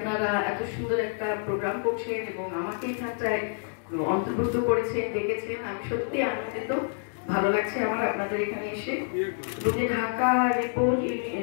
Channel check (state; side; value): silent; right; digital silence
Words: এত সুন্দর একটা প্রোগ্রাম করছেন এবং আমাকে এখানটায় অন্তর্ভুক্ত করেছেন, ডেকেছেন, আমি সত্যি আনন্দিত। ভালো লাগছে আমার আপনাদের এখানে এসে। যে ঢাকা